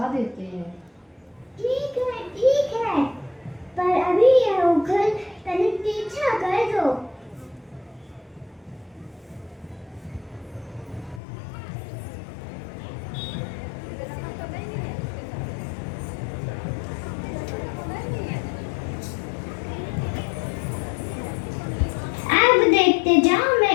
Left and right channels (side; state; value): right; drops out; at 11.2 s